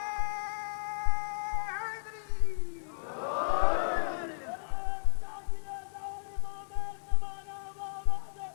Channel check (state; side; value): silent; right; digital silence